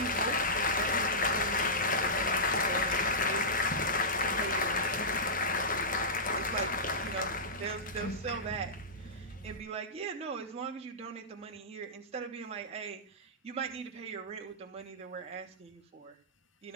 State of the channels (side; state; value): both; normal; correlation -0.15